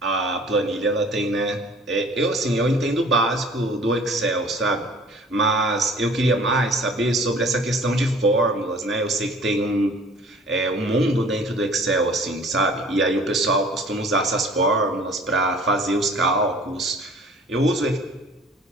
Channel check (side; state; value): both; normal; correlation 0.50